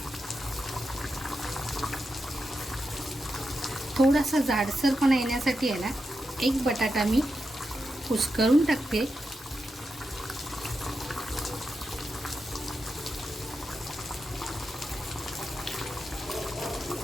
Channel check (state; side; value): normal; both; correlation 0.88